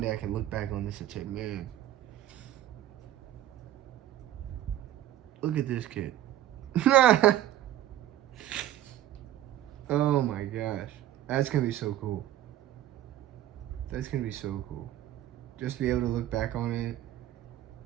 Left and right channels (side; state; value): left; quieter; 13.0 dB